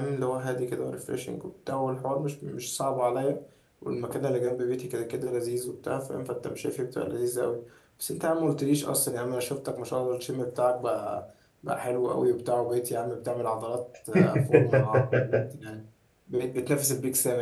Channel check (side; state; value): both; identical; correlation 1.00